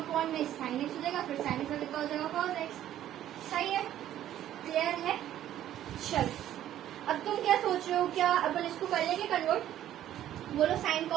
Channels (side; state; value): left; quieter; 12.0 dB